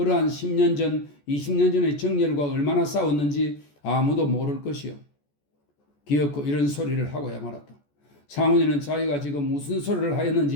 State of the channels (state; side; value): late; right; 14 ms